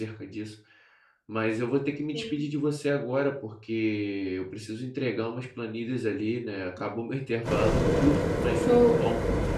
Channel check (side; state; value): both; identical; correlation 1.00